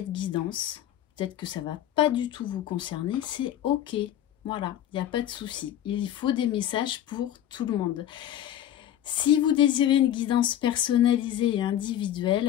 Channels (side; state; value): right; quieter; 11.4 dB